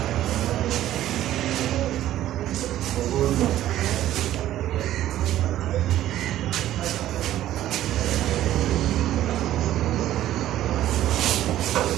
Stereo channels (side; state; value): left; quieter; 13.2 dB